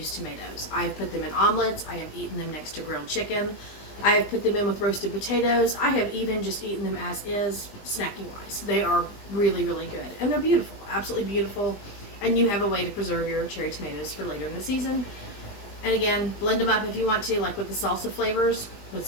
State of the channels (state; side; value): late; right; 20 ms